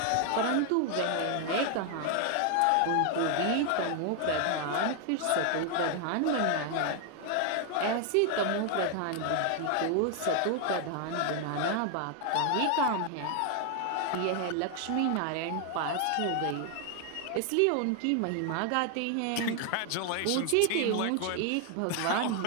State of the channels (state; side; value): different; both; correlation 0.00